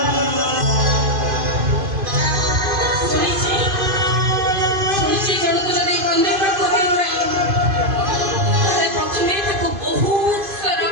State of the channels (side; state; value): left; late; 2.5 ms